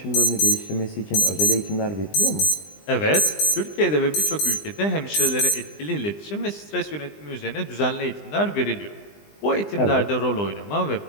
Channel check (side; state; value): right; late; 20 ms